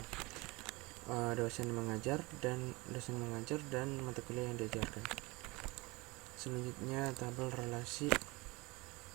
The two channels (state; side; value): quieter; left; 24.0 dB